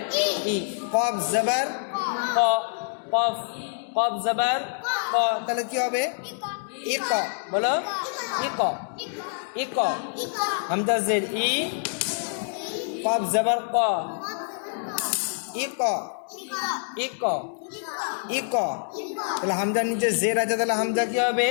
ই। কফ জবর ক, কফ, কফ জবর ক, তাহলে কি হবে? ইক। বলো, ইক, ইক। হামজা জের ই, কফ জবর ক, ইক, ইক, ইক। তাহলে হামজার নিচে জের আছে, তাহলে হামজা কি হবে?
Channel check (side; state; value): right; silent; digital silence